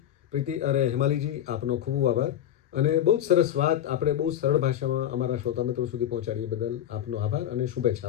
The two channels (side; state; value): right; quieter; 11.0 dB